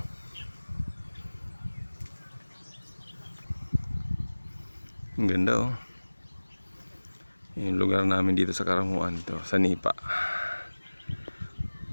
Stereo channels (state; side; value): inverted; both; correlation -1.00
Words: Ang ganda o. Yung lugar namin dito sa Karamuan, ito sa Nipa.